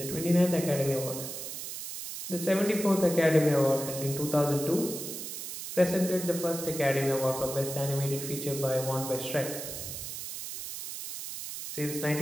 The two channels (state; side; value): noise; right; hiss, 7 dB below the sound